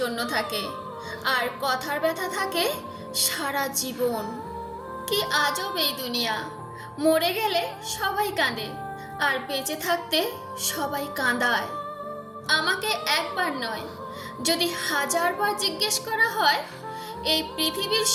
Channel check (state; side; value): identical; both; correlation 1.00